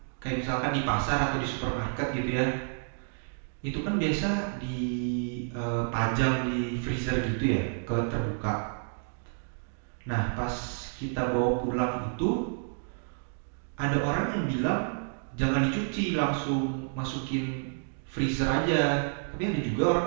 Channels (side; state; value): left; silent; 58 dB below the other